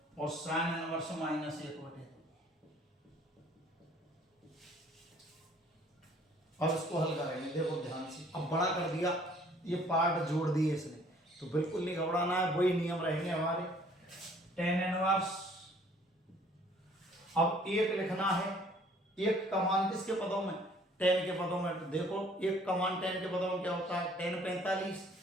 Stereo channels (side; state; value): both; normal; correlation 0.57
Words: और sin इनवर्स -1/2। अब इसको हल करेंगे, देखो ध्यान से। अब बड़ा कर दिया, ये पार्ट जोड़ दिए इसने, तो बिल्कुल नहीं घबराना है, वही नियम रहेंगे हमारे। tan इनवर्स, अब एक लिखना है, एक का मान किसके पदों में, tan के पदों में। तो देखो एक का मान tan के पदों में क्या होता है, tan 45,